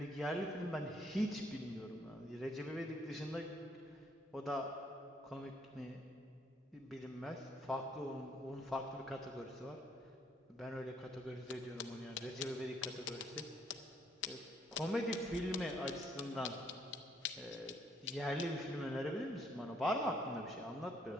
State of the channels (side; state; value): both; normal; correlation 0.68